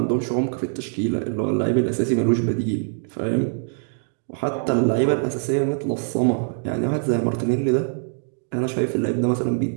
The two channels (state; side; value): silent; left; digital silence